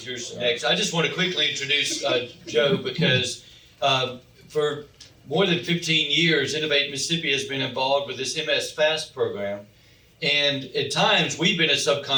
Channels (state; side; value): identical; both; correlation 1.00